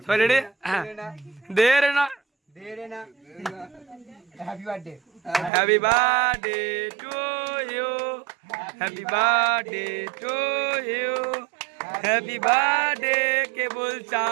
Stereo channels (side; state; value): left; drops out; at 5.5 s